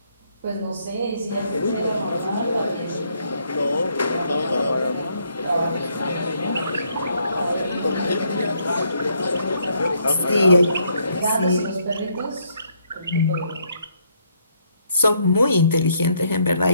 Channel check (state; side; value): inverted; both; correlation -0.72